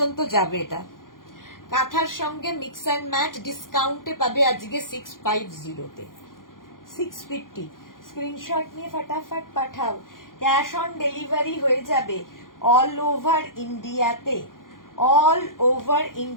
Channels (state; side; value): late; right; 0.90 ms